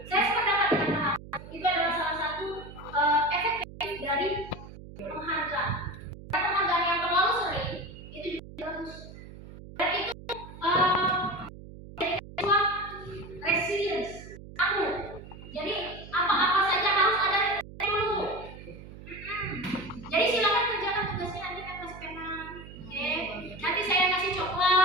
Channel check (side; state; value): right; noise; hum, 15 dB below the sound